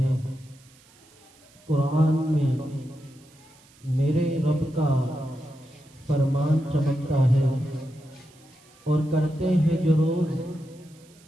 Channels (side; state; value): right; noise; hiss, 28 dB below the sound